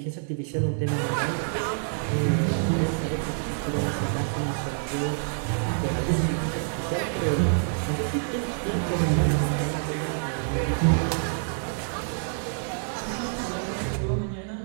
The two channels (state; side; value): silent; left; digital silence